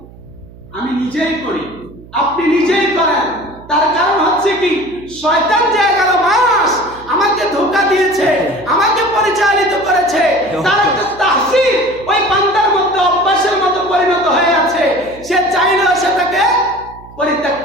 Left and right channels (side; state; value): right; noise; hum, 21 dB below the sound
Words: আমি নিজেই করি, আপনি নিজেই করেন। তার কারণ হচ্ছে কি, শয়তান যে 11 মাস আমাকে ধোঁকা দিয়েছে, আমাকে পরিচালিত করেছে, তার একটা তাহসিল ওই বান্দার মধ্যে অভ্যাসের মতো পরিণত হয়ে আছে। সে চাইলেও সেটাকে পরিত্যাগ